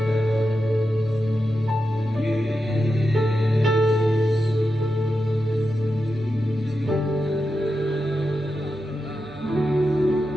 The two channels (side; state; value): right; noise; hum, 24 dB below the sound